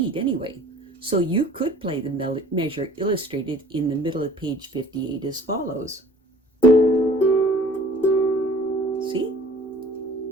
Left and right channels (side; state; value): both; normal; correlation 0.50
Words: anyway. So you could play the measure illustrated in the middle of page 58 as follows. See?